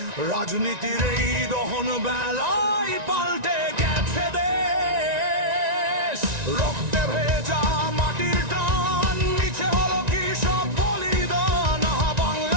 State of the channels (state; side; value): late; left; 1.9 ms